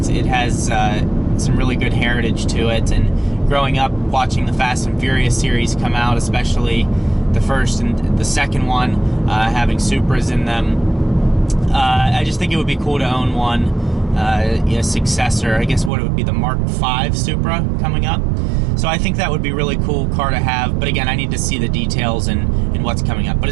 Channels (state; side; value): drops out; left; at 15.9 s